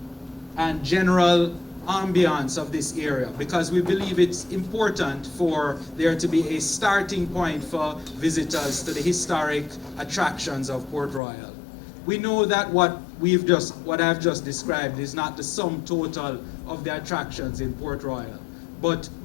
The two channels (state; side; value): drops out; right; at 11.2 s